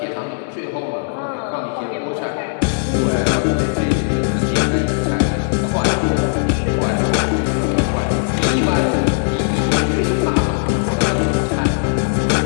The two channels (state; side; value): silent; right; digital silence